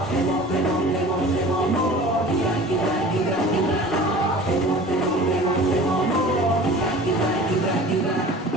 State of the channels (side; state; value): both; normal; correlation 0.41